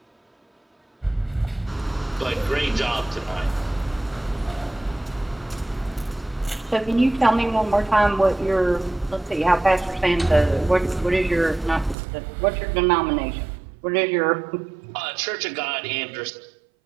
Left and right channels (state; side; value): drops out; left; at 12.0 s